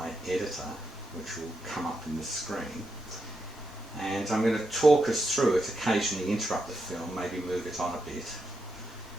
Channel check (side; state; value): both; normal; correlation 0.84